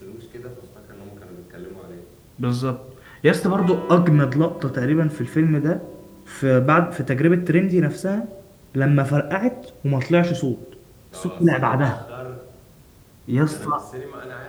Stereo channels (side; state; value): both; identical; correlation 1.00